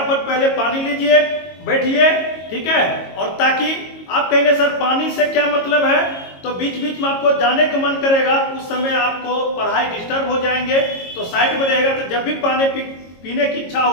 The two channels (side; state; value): right; late; 22 ms